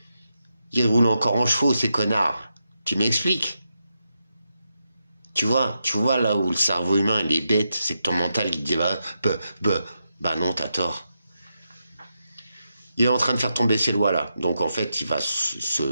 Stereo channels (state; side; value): inverted; both; correlation -0.86